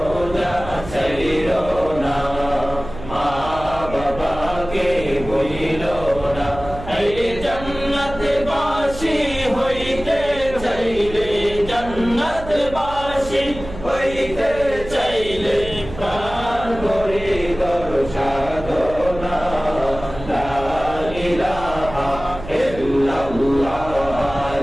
ছাইরো না মা বাবাকে ভুইলো না এই জান্নাত বাসী হইতে চাইলে জান্নাত বাসী হইতে চাইলে প্রাণ ভরে কর সাধনা লা ইলাহা ইল্লাল্লাহ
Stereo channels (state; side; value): noise; right; hum, 12 dB below the sound